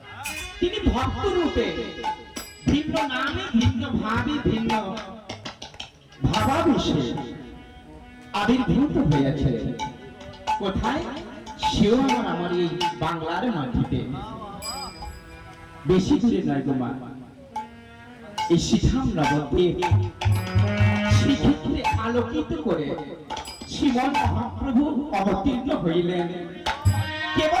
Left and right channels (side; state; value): both; identical; correlation 1.00